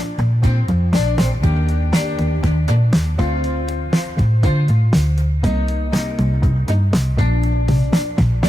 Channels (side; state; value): both; normal; correlation 0.91